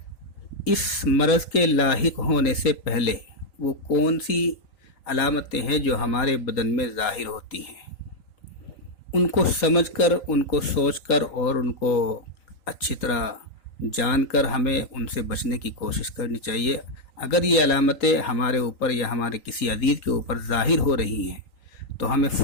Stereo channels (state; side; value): late; right; 3.9 ms